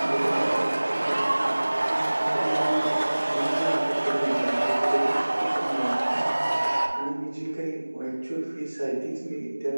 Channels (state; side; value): inverted; both; correlation -1.00